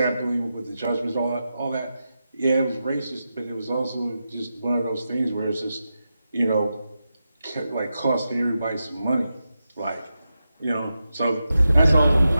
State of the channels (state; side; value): inverted; both; correlation -0.90